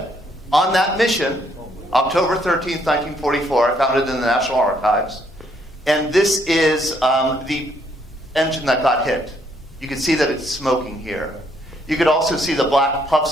on that mission, October 13th, 1944. I found it in the National Archives. And this is the engine that got hit. You can see that it's smoking here. You could also see the black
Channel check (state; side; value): normal; both; correlation 0.70